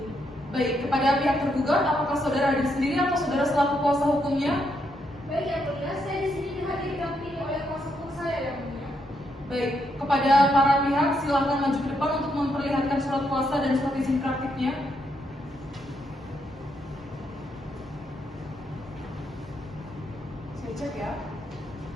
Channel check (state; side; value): normal; both; correlation 0.78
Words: Baik, kepada pihak tergugat, apakah saudara hadir sendiri atau saudara selaku kuasa hukumnya? Baik, yang mulia, saya di sini dihadir didampingi oleh kuasa hukum saya, yang mulia. Baik, kepada para pihak silakan maju ke depan untuk memperlihatkan surat kuasa dan surat izin praktiknya. Saya cek ya.